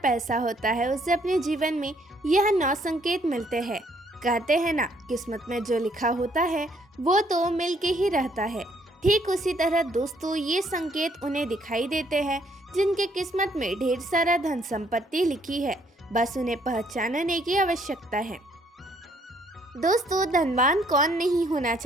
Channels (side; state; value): both; normal; correlation 0.67